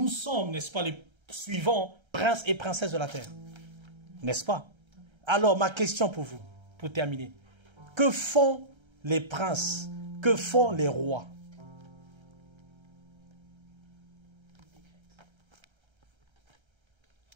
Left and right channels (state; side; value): late; left; 1.3 ms